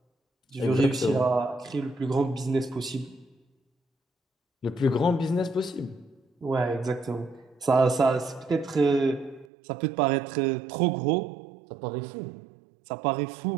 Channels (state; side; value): drops out; left; at 9.5 s